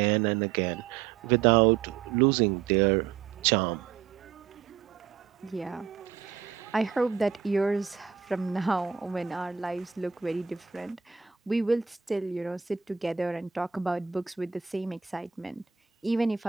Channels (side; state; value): left; quieter; 7.4 dB